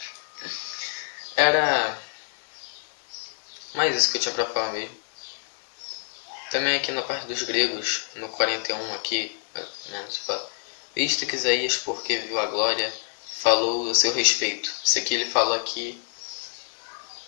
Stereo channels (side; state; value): right; silent; digital silence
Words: Era mais isso que eu tinha pra falar mesmo. Também aqui na parte dos gregos, no 41 aqui, visto que Isaías, porque viu a glória, falou a seu respeito. Isso aqui ele fala aqui